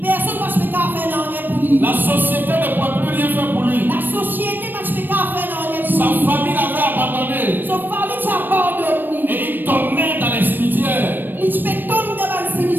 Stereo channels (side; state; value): left; late; 0.093 ms